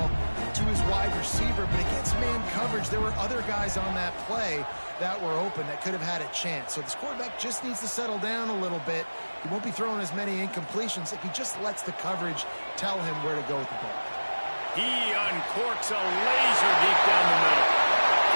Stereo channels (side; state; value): both; inverted; correlation -1.00